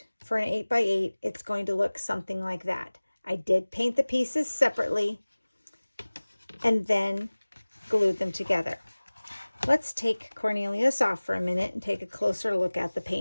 for an 8 by 8, it's going to look something like that. I did paint the pieces separately and then glued them together. Let's take Cornelius off for a minute and take a closer look at the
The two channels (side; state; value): both; inverted; correlation -1.00